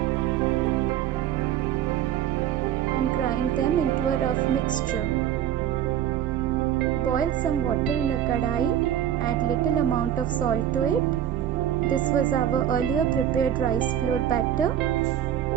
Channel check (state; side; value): quieter; left; 10.6 dB